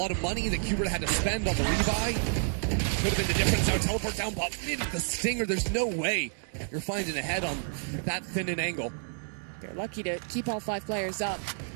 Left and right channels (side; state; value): left; silent; 58 dB below the other